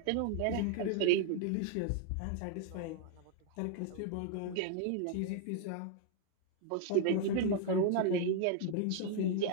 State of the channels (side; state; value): both; different; correlation 0.00